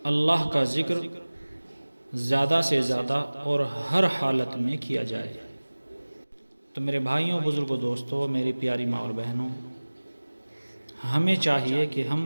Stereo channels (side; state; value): both; inverted; correlation -1.00